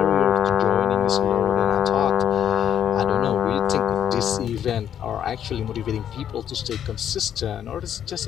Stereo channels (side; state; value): right; quieter; 9.6 dB